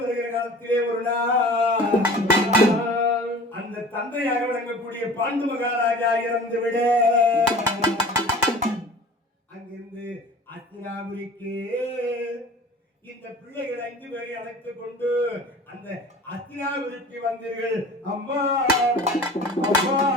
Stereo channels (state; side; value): normal; both; correlation 0.42